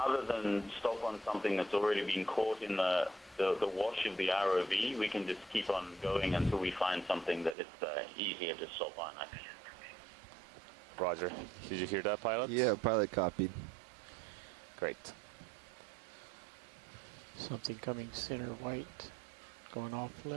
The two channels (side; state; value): left; drops out; at 7.6 s